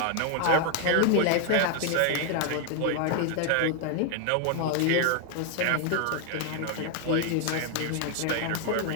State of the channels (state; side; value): different; both; correlation 0.00